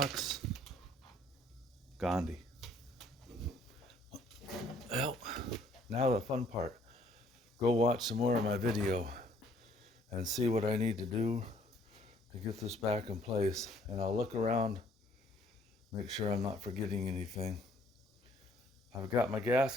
Gandhi. Well, now the fun part. Go watch some more of my video and see what I need to do to get this back in place. And I'll look around, make sure I'm not forgetting anything. I've got my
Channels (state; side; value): normal; both; correlation 0.62